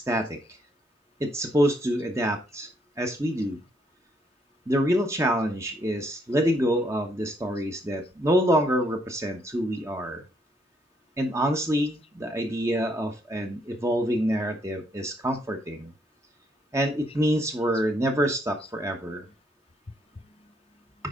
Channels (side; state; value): both; normal; correlation 0.72